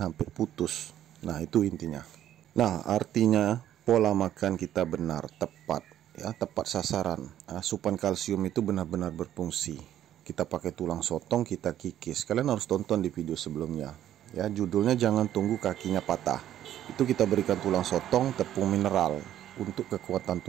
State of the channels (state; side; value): quieter; left; 11.6 dB